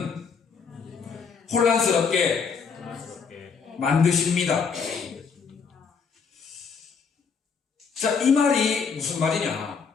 혼란스럽게 만드십니다. 자, 이 말이 무슨 말이냐?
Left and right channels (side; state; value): right; quieter; 5.8 dB